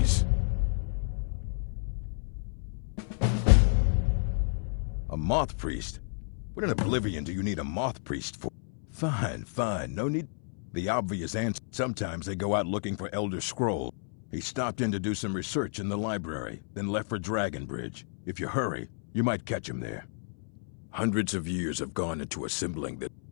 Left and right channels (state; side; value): silent; right; 57 dB below the other